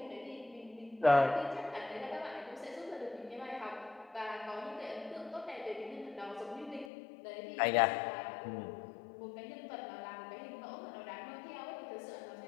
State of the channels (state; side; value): drops out; right; at 6.9 s